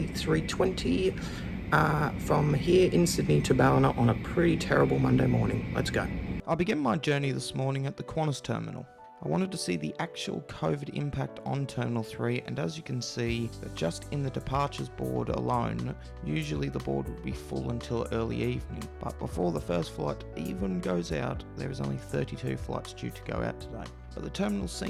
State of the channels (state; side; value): identical; both; correlation 1.00